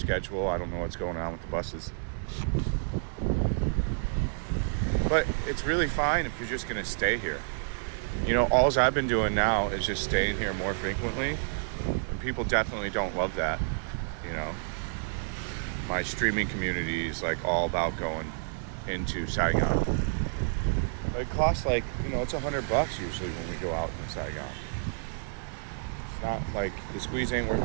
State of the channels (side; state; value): left; silent; digital silence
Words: I don't know what's going on with the buses. But it's really fine if you're just going to stay here. You know, all I've been doing now is just staying here more frequently. And people definitely don't love that, you know. My streaming community is like all about going into Saigon. It costs like, you know, it's $100 usually when we go out in Saigon. It's not like the squeeze ain't worth